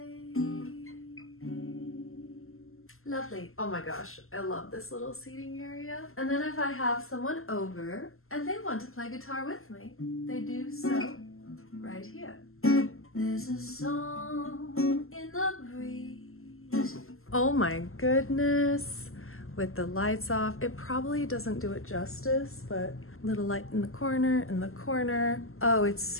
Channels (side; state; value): right; late; 0.62 ms